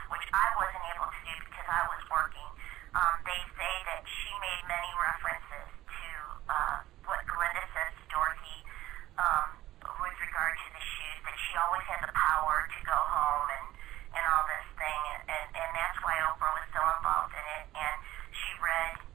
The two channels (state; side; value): quieter; left; 15.3 dB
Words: which I wasn't able to do because I was working. They say that she made many references to what Glinda says to Dorothy with regard to the shoes, that she always had the power to go home and all this thing, and that's why Oprah was so involved in it. And she read